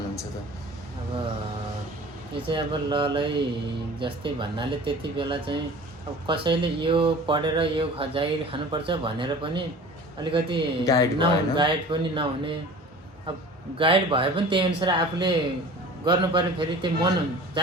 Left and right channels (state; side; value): normal; both; correlation 0.41